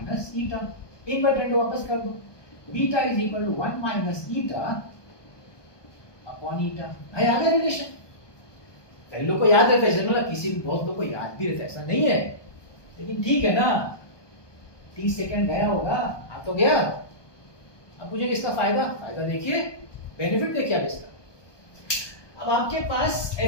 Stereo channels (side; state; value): right; late; 1.2 ms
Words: eta. Inverted वापस कर दो, beta is equal to 1 minus eta upon eta. भाई आ गया रिलेशन। कई लोग को याद रहता है, मतलब किसी बहुत लोग को याद भी रहता है, ऐसा नहीं है, लेकिन ठीक है ना, 30 सेकंड गया होगा, आ तो गया। अब मुझे इसका फायदा देखिए, बेनिफिट देखिए आप इसका। अब आपके पास